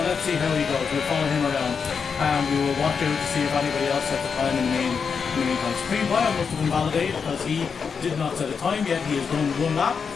let's see how he goes. We'll follow him around and we will watch out to see if anybody else set the time in the meantime. Supreme Bio must have invalidated because he did not set a time yet. He has done one lap.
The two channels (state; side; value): quieter; right; 5.9 dB